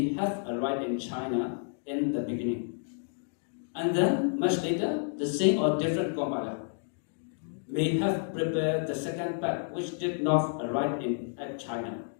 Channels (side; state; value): right; silent; digital silence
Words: have arrived in China in the beginning, and then much later the same or different compiler may have prepared the second part which did not arrive at China.